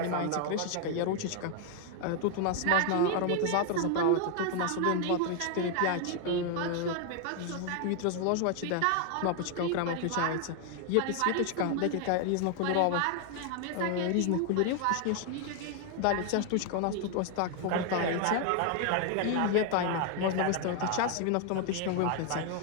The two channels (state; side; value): different; both; correlation 0.00